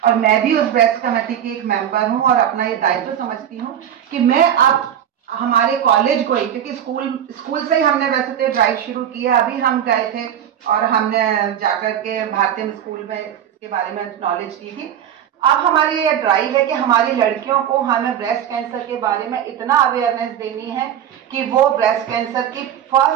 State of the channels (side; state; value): left; quieter; 9.8 dB